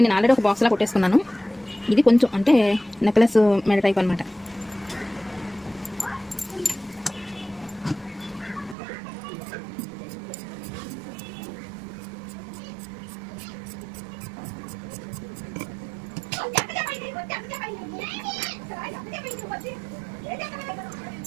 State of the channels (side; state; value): left; drops out; at 8.8 s